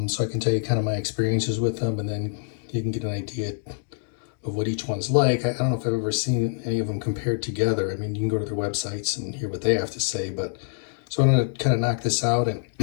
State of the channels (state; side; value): silent; right; digital silence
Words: So I can tell you kind of my experiences with them, and then you can get an idea of what each one's like. I don't know if I've ever seen any of them compared together. I mean, you can go to their websites and hear what they have to say, but so I'm going to kind of knock this out and,